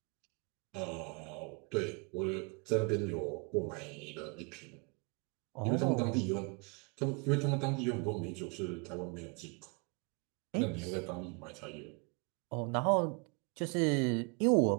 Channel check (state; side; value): quieter; left; 33.0 dB